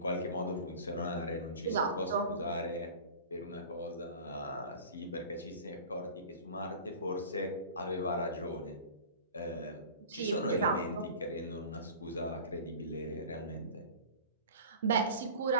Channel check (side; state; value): both; inverted; correlation -0.38